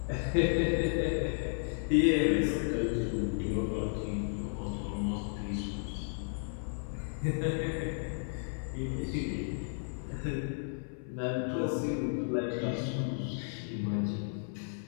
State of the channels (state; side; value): silent; right; 55 dB below the other